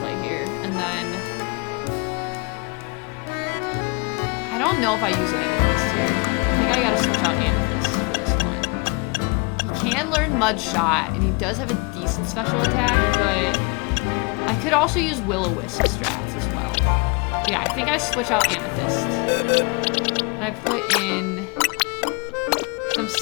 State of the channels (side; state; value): right; quieter; 32.4 dB